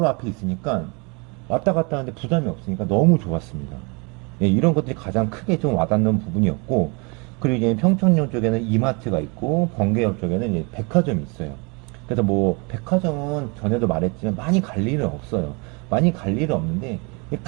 앞에 있으니까 왔다 갔다 하는데 부담이 없으니까 너무 좋았습니다. 예, 이런 것들이 가장 크게 좀 와닿는 부분이었고, 그리고 이제 평촌역 쪽에는 이마트가 있고, 번개역 쪽에는 이제 백화점이 있어요. 그래서 뭐, 백화점은 전에도 말했지만 많이 갈 일은 없어요. 많이 갈 일은 없는데,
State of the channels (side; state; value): left; quieter; 31.2 dB